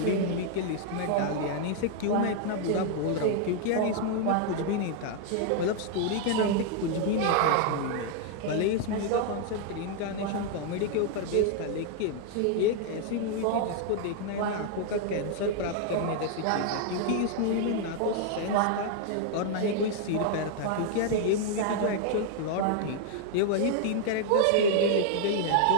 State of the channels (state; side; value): different; both; correlation 0.00